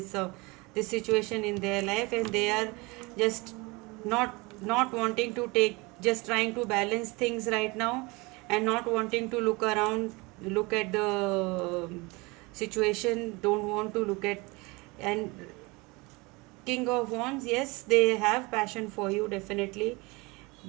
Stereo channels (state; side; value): quieter; left; 25.3 dB